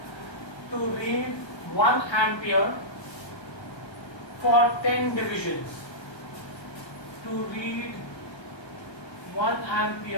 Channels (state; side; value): late; right; 1.3 ms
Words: to read 1 ampere for 10 divisions, to read 1